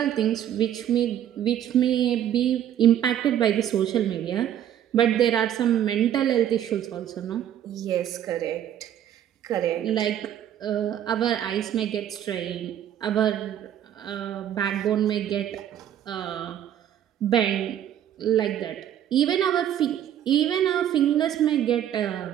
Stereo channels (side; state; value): left; quieter; 10.6 dB